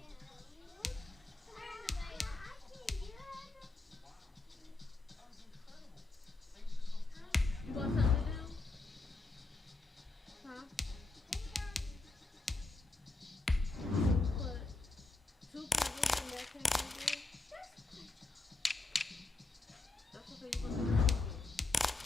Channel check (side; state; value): right; quieter; 3.2 dB